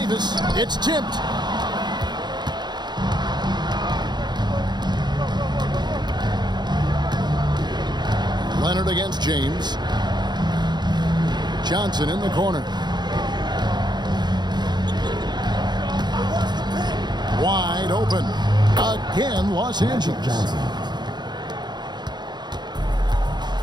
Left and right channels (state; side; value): late; left; 0.21 ms